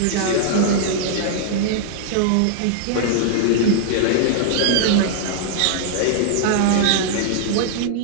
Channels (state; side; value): different; both; correlation -0.01